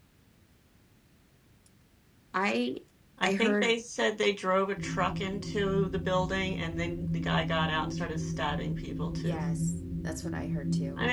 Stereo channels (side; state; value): both; identical; correlation 1.00